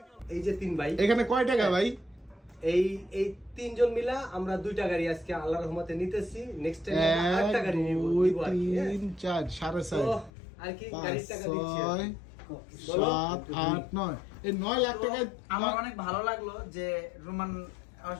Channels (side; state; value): right; drops out; at 10.3 s